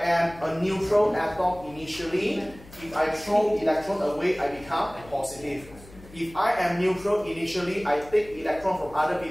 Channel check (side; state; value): left; noise; hum, 20 dB below the sound